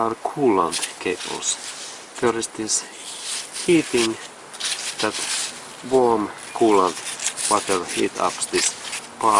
coolant cables. There is this heating, that warm coolant water heat up this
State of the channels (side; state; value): both; identical; correlation 1.00